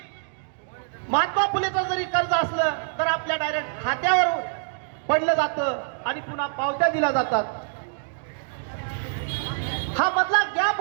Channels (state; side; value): silent; left; digital silence